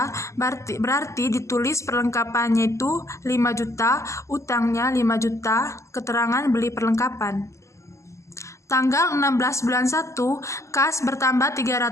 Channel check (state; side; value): late; right; 0.14 ms